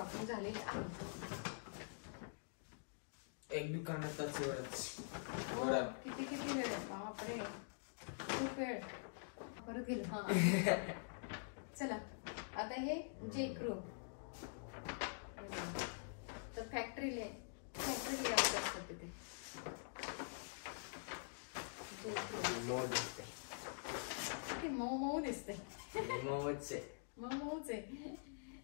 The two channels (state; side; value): silent; right; digital silence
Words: झालेली आहे. एक दुकानातच एवढंच. किती वेळ? बापरे, खूप वेळ. परत गेलो. हा चला आता हे जेक्रू. तर फॅक्टरी लेआउट असतं तिथे. किती मऊ दिसते. मऊच आहे.